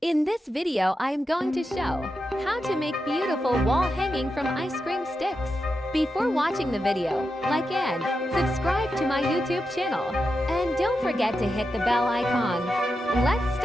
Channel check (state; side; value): normal; both; correlation 0.88